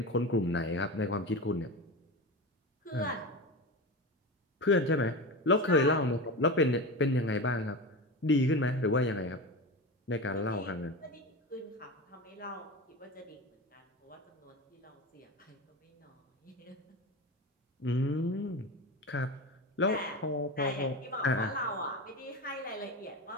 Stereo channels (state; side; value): normal; both; correlation 0.24